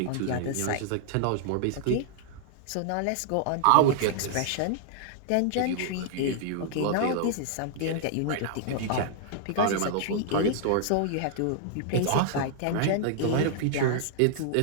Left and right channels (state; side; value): different; both; correlation -0.01